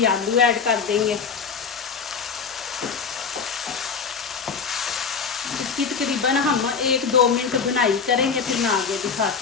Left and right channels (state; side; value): quieter; right; 5.8 dB